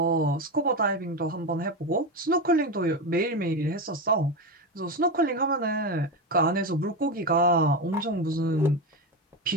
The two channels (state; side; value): normal; both; correlation 0.16